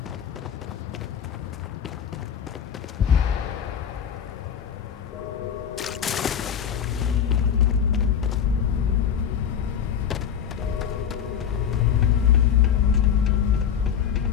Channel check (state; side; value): quieter; right; 8.4 dB